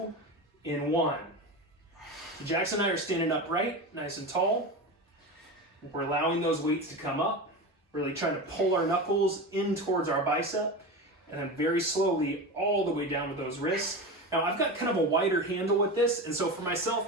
in 1. Jackson and I are standing upright, nice and tall. We're allowing those weights to come up, really trying to pull our knuckles in towards our bicep, and then very slowly all the way down with those wrists. Now I've got kind of a wider handle with this, and so for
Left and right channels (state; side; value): normal; both; correlation 0.24